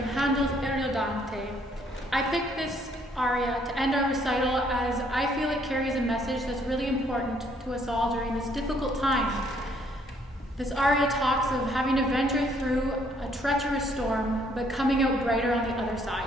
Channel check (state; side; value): normal; both; correlation 0.66